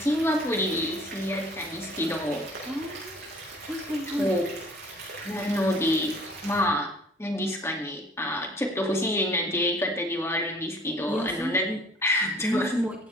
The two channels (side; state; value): both; normal; correlation 0.53